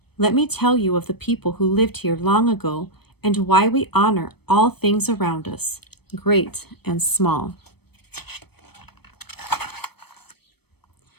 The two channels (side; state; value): right; late; 0.97 ms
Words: let me tell you of the people who lived here long ago and why we honor all things around us, great and small.